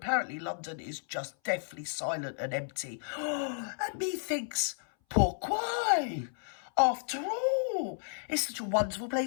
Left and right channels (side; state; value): right; silent; 56 dB below the other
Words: London is just deathly silent and empty. And methinks, pourquoi? After all, it's such a wonderful